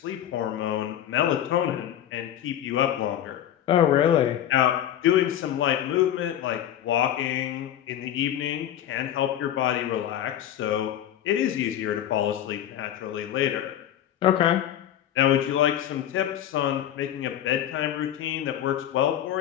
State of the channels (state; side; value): quieter; right; 11.1 dB